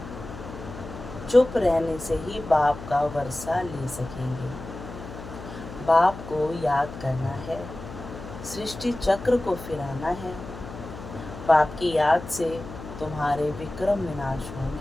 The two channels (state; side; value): noise; left; hum, 12 dB below the sound